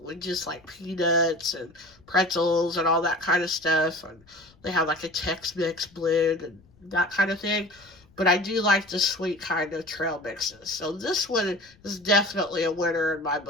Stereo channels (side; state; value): left; noise; rumble, 29 dB below the sound